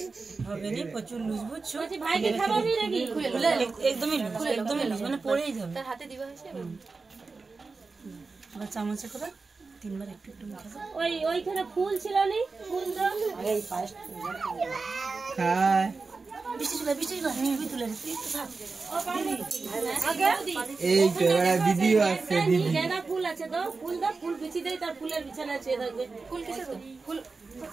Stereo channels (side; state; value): left; quieter; 4.1 dB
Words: প্রচুর লুজ বুঝছো, ভাইকে খাওয়াবি নাকি? একদমই লুজ মানে পড়েই যাবে। তার হাতে দিবা হয়েছে চামচে করে তিনবার একটু একটু ওই ওইখানে ফুল ছিল নি, ফুল দাও এই ফার্স্ট খায় এই দিদিও আছে, দিদি গেঁদা ফুল আছে তো ফুল দাও, ফুল বিছি দেই, তার ফুলের বিছানা আছে থাকবে। ফুল কিসে তো ফুল